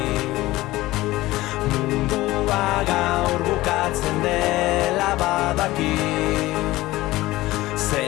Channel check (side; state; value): right; quieter; 18.0 dB